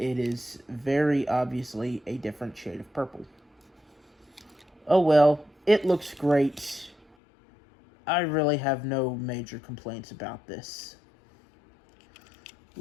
is very obviously a different shade of purple. Oh well, it looks great. I really have no major complaints about this.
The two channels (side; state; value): right; drops out; at 7.2 s